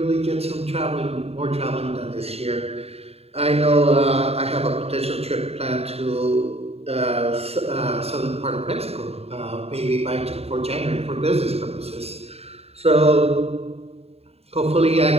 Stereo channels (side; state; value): left; late; 0.29 ms